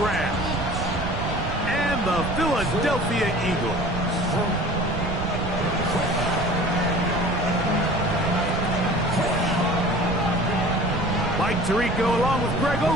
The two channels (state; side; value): noise; right; rumble, 5 dB below the sound